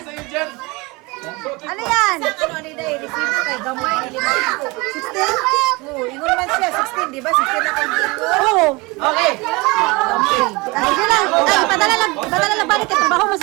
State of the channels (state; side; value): quieter; left; 24.9 dB